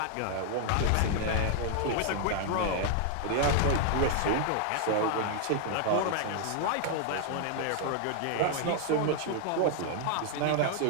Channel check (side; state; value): both; different; correlation 0.00